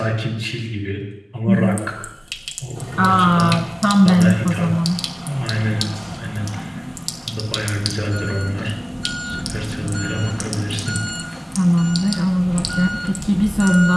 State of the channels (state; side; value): identical; both; correlation 1.00